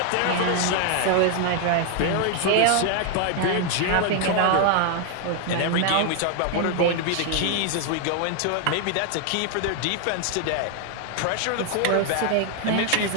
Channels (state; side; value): different; both; correlation 0.00